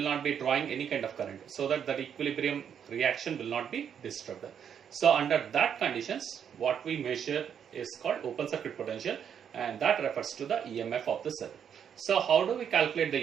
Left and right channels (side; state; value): left; quieter; 8.2 dB